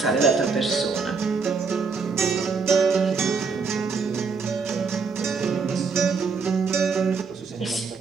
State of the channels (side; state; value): left; quieter; 5.0 dB